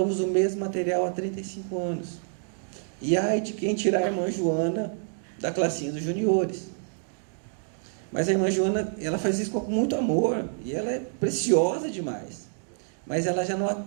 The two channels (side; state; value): left; silent; digital silence